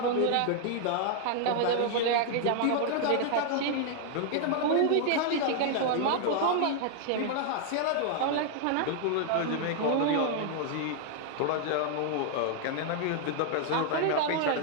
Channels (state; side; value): different; both; correlation 0.00